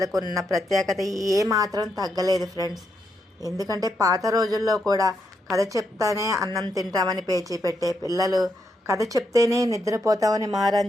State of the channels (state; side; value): normal; both; correlation 0.80